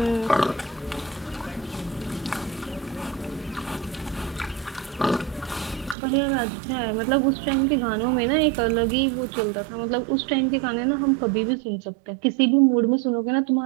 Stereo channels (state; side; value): drops out; left; at 6.0 s